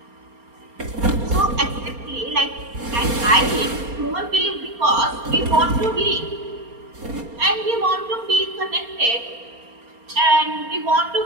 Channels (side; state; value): left; late; 4.3 ms